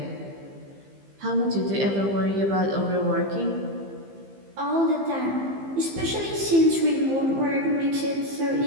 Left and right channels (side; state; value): left; late; 15 ms